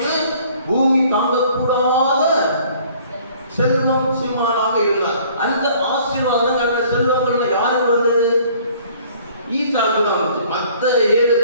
பூமி தாங்கக்கூடாத செல்வம் சீமானாக இருந்தார். அந்த ஆசீர்வாதம், அந்த செல்வங்கள் யாருக்கு வந்தது? ஈசாக்கு தான் வந்துச்சு. மற்ற 7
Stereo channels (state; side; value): inverted; both; correlation -0.55